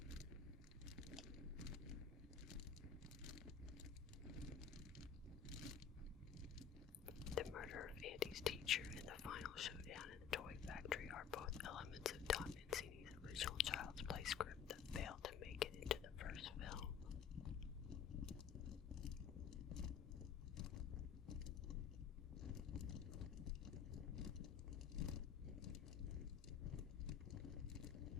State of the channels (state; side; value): quieter; right; 7.7 dB